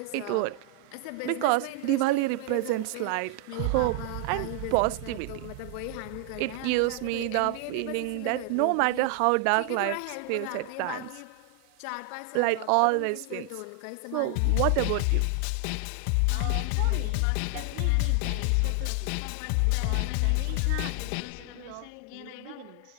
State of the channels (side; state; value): both; different; correlation 0.00